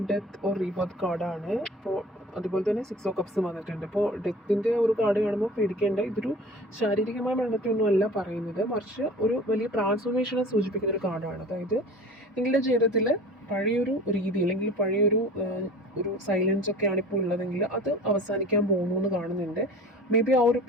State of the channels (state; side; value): normal; both; correlation 0.41